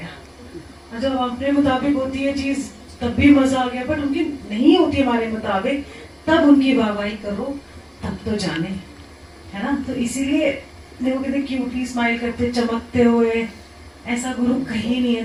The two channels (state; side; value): identical; both; correlation 1.00